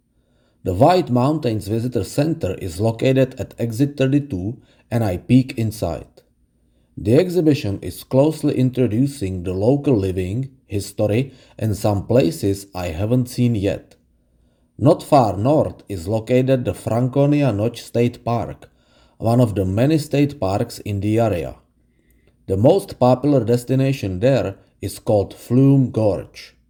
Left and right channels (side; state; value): both; identical; correlation 1.00